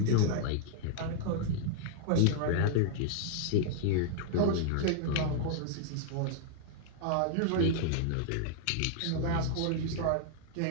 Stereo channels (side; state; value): both; different; correlation -0.01